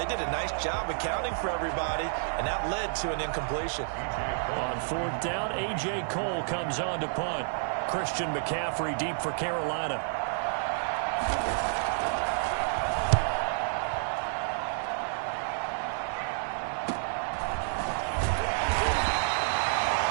did a nice job accounting for everybody, and that led to an incompletion. On 4th down, A.J. Cole comes on to punt. Christian McCaffrey deep for Carolina.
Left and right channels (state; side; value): silent; left; digital silence